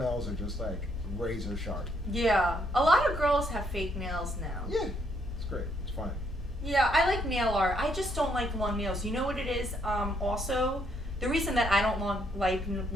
are just like razor sharp. Yeah. A lot of girls have fake nails now. Yeah, it's great. It's fine. Yeah, I like nail art. I just don't like long nails. You know what it is? Also, the reason that I don't like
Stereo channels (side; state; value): both; normal; correlation 0.72